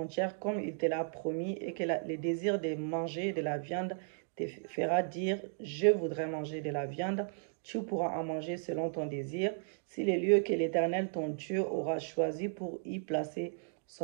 comme il te l'a promis et que le désir de manger de la viande te fera dire « Je voudrais manger de la viande », tu pourras en manger selon ton désir. Si les lieux que l'Éternel, ton Dieu, aura choisis pour y placer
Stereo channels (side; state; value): left; silent; digital silence